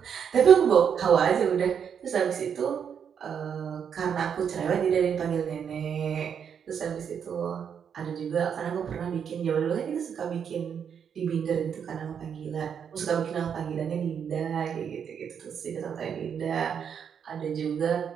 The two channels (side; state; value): left; quieter; 7.6 dB